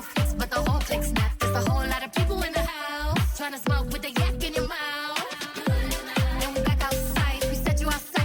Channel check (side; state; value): both; identical; correlation 1.00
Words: flicks, but the whole click snap. There's a whole lot of people in the house trying to smoke with the yak in your mouth. And we back outside. We said you